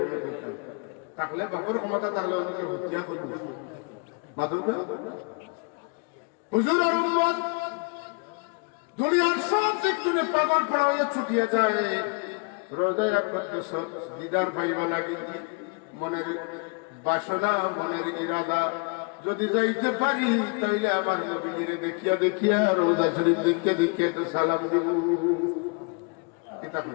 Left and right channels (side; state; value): right; quieter; 34.0 dB